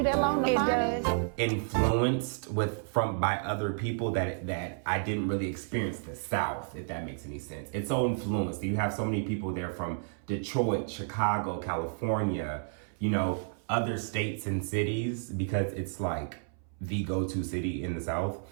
that long to find it? influenced by other people that I didn't really experience the South, if that makes any sense. It's so influenced. You have so many people there from Detroit, Chicago, California, you know, other states and cities, because it's like the go-to city in the South,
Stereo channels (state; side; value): silent; left; 57 dB below the other